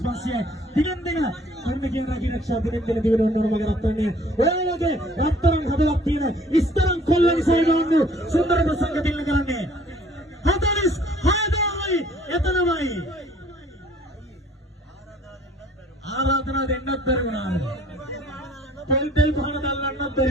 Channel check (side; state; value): both; normal; correlation 0.56